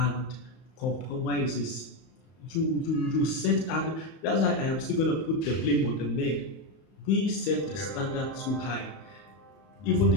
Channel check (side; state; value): right; late; 31 ms